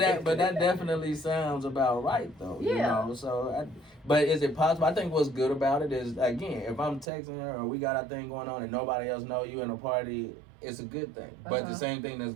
definitely sounds about right though. Yeah. You know, so. But is it possible? I think what's good about it is, again, if I'm texting her or we got our thing going on and nobody else know you in a party, it's a good thing. But the same thing that's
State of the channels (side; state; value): left; drops out; at 7.1 s